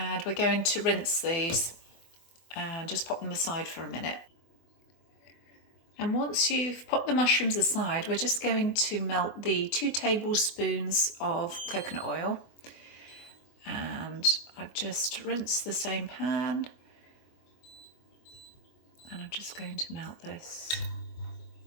we're going to rinse these and just pop them aside for a minute. And once you've popped the mushrooms aside, we're just going to melt the 2 tablespoons of coconut oil. And I've just rinsed the same pan, and I'm just going to melt this.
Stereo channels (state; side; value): late; right; 24 ms